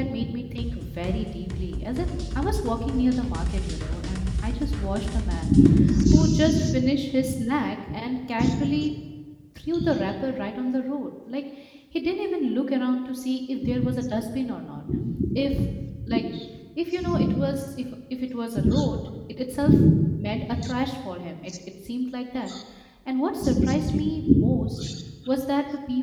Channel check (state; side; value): identical; both; correlation 1.00